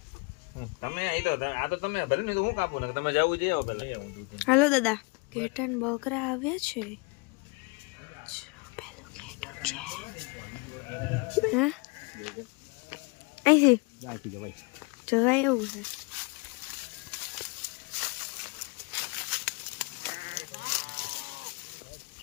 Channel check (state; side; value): quieter; right; 29.8 dB